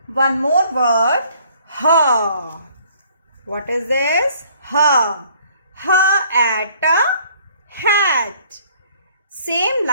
One more word, her. What is this? Her. Her at, hat. Same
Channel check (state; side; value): inverted; both; correlation -0.59